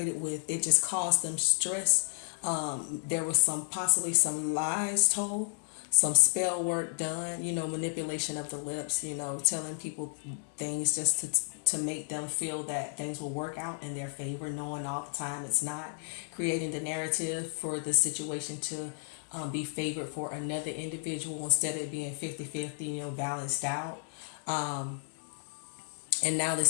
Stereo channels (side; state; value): right; silent; digital silence